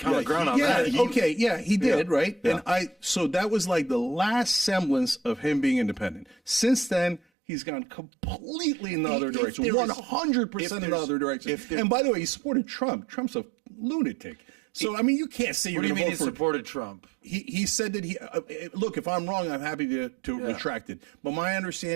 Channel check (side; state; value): left; drops out; at 7.2 s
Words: ground on that. He did, right? Yeah. And so that was like the last semblance of him being independent. Since then, he's gone completely in the other direction, 100% in the other direction. And by the way, he supported Trump. Trump's a lunatic. So, I mean, you can't say you're going to vote for... What do you mean he supported Trump? He said that look, if I'm wrong, I'm happy to retract it. But my